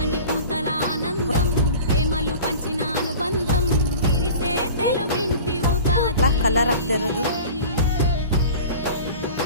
పూతల ఆనందం ప్రేమలు పంచిన అనుబంధం విరిసే తెలుగింటి ఉగాది కలర్ ಆಗ್ತಿರೋದು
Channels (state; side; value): inverted; both; correlation -0.39